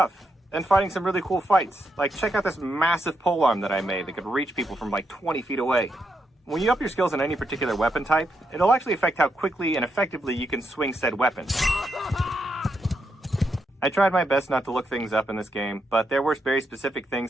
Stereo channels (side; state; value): both; normal; correlation 0.82